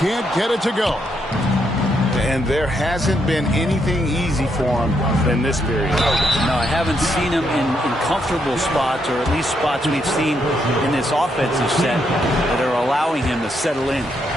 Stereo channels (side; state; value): both; normal; correlation 0.77